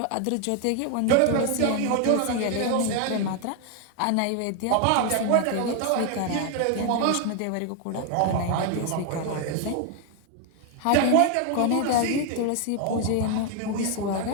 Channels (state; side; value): different; both; correlation 0.01